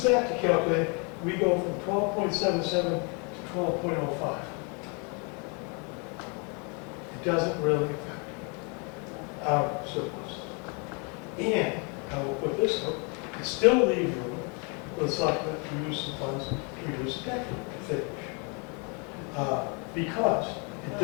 that to calculate, we go from 12.77 to 12.05. It doesn't really affect our surplus. And I will put this up, it still leaves room for the selectmen to use some funds to reduce the tax rate to finish. Because it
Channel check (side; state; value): right; quieter; 34.6 dB